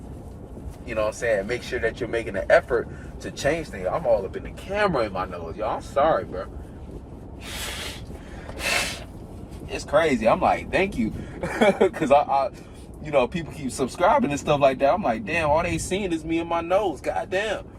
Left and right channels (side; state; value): both; identical; correlation 1.00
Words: You know what I'm saying? Make sure that you're making an effort to change things. I'm all up in the camera in my nose, y'all. I'm sorry, bro. It's crazy. I'm like, thank you. Because I you know, people keep subscribing and stuff like that. I'm like, damn, all they seeing is me and my nose. Goddamn.